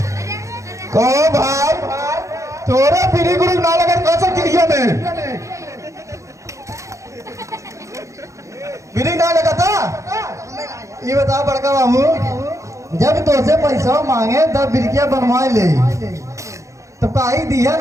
को भाई तोरे पीढ़ी गुरु ना लगे कैसे क्रिया में पीढ़ी ना लगा था। ये बता बड़का बाबू, जब तुझसे पैसा मांगे तब बिरकिया बनवाए ले, तो काई दिया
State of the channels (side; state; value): left; late; 0.15 ms